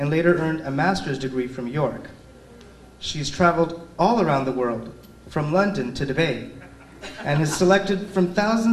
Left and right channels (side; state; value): both; identical; correlation 1.00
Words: later earned a master's degree from York. She's traveled all around the world, from London to Dubai, and has selected from